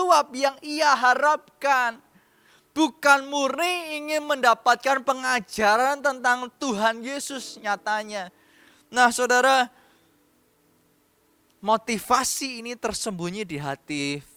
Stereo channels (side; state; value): both; identical; correlation 1.00